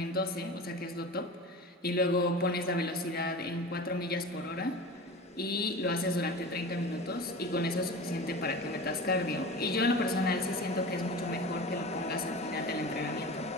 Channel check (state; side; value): normal; both; correlation 0.33